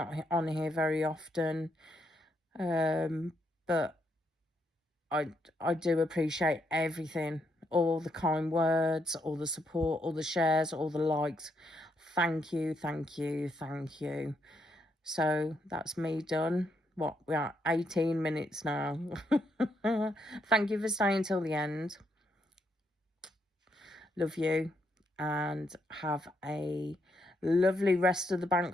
on here very often, but I do appreciate everything, all the kind words, all the support, all the shares, all the likes. Thank you, thank you, thank you. So that's me done. We are 18 minutes now. Thank you for staying till the end. Love you, and have a lovely rest of the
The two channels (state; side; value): normal; both; correlation 0.77